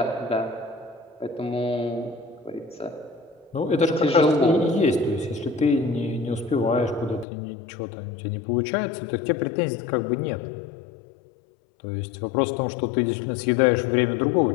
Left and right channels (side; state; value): right; drops out; at 7.2 s